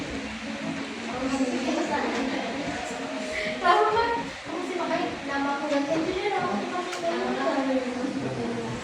Lama kan? Kamu sih makanya nama aku ganti aja deh, nama aku kasih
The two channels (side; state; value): both; identical; correlation 1.00